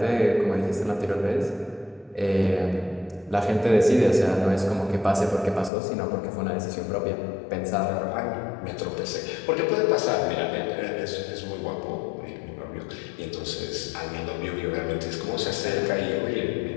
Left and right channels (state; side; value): drops out; right; at 5.7 s